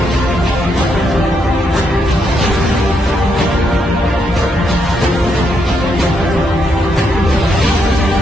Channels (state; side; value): normal; both; correlation 0.78